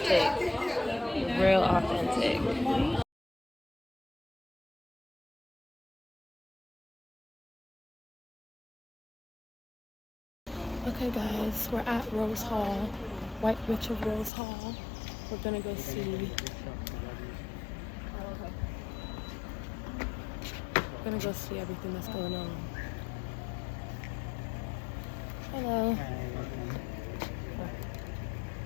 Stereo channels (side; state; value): right; drops out; at 14.3 s